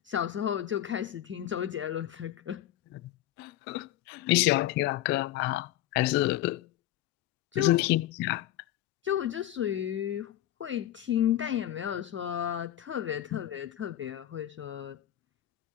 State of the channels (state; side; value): quieter; right; 13.1 dB